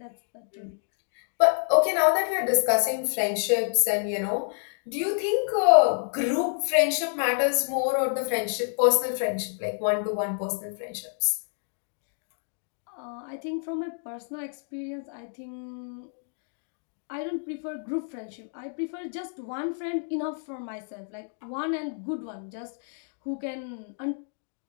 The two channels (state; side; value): silent; right; digital silence